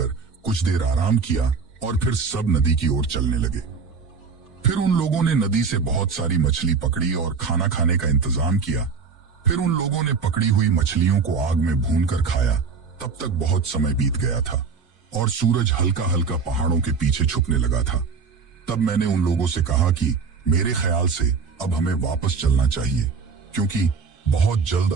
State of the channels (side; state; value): left; quieter; 5.3 dB